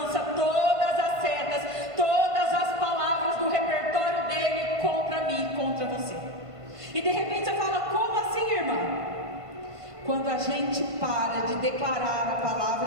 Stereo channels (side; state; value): left; late; 1.5 ms